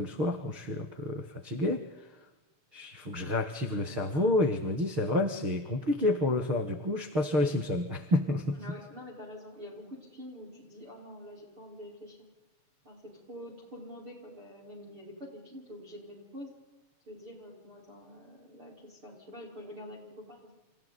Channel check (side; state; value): left; late; 6.6 ms